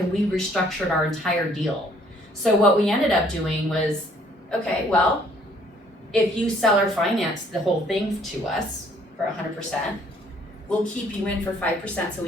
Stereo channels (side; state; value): both; normal; correlation 0.62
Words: we restructured our entire deal. So what we ended up doing was, okay, well, if you seller finance the whole thing to us for 100%, we'll keep you in for 5% so